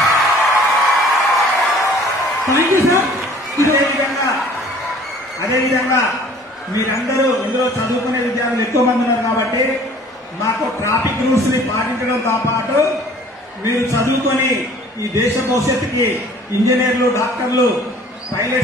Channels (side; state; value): both; normal; correlation 0.51